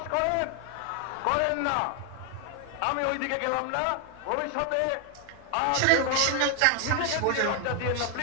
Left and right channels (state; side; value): different; both; correlation 0.01